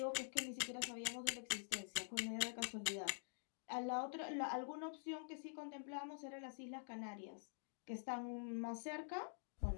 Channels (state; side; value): silent; right; digital silence